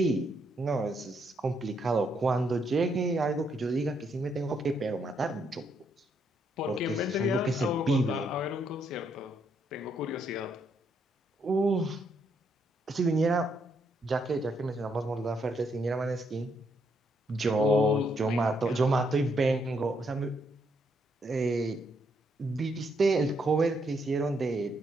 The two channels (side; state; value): both; normal; correlation 0.75